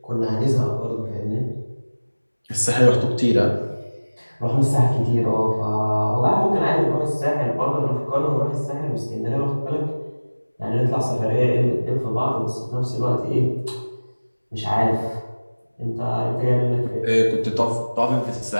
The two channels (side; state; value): both; inverted; correlation -1.00